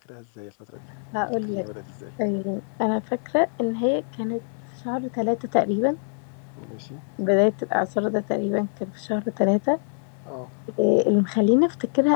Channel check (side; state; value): right; silent; 62 dB below the other